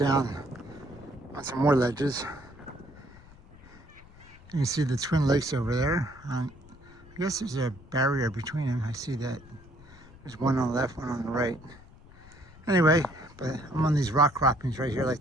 on some more ledges. You can see the Twin Lakes over there. I guess there's a barrier between them. I see that. There's one on the left, one on the right. Anyway, but I'm on these rock croppings right here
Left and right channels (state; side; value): noise; left; rumble, 22 dB below the sound